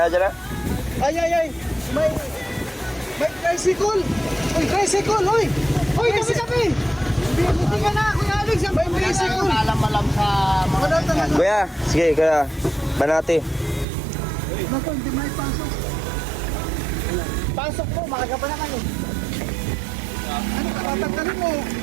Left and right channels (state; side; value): drops out; left; at 13.9 s